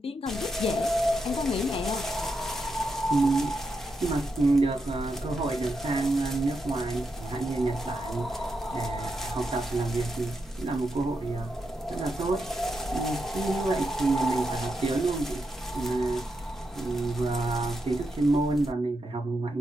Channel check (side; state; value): both; normal; correlation 0.84